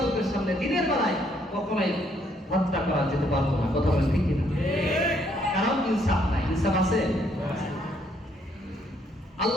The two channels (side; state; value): both; normal; correlation 0.69